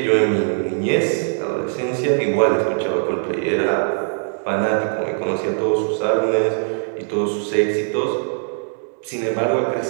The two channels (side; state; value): left; silent; digital silence